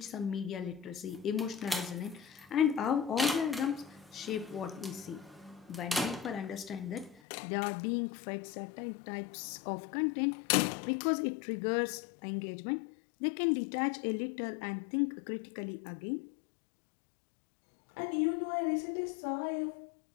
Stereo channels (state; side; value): drops out; right; at 7.2 s